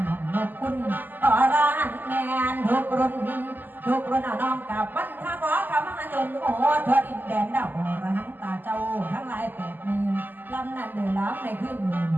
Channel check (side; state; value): left; late; 0.088 ms